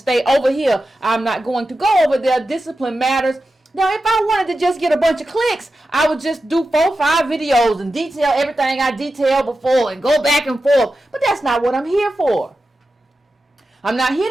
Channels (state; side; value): normal; both; correlation 0.91